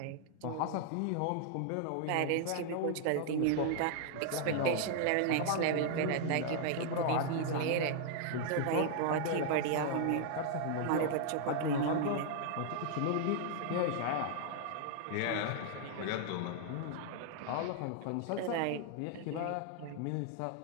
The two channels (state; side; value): different; both; correlation -0.01